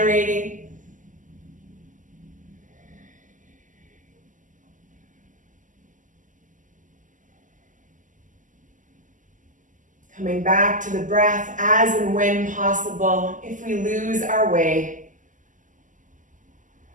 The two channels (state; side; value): late; left; 0.37 ms